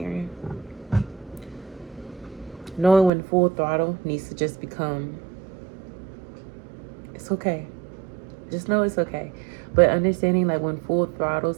Knowing when full throttle needs to just become, it's okay. Just know it's okay. But understanding like when full throttle,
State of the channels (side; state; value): left; drops out; at 3.1 s